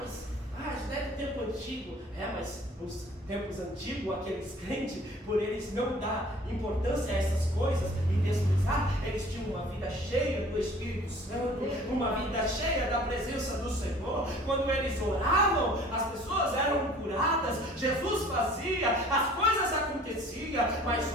Isso é do tempo antigo. Mas nos tempos antigos, aqueles crentes, por eles não dar importância a essas coisas e desprezar, eles tinham uma vida cheia do Espírito Santo, uma vida cheia da presença do Senhor. Quando eles oravam, as pessoas eram curadas, Jesus fazia, as coisas aconteciam. Mas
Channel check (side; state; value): both; normal; correlation 0.50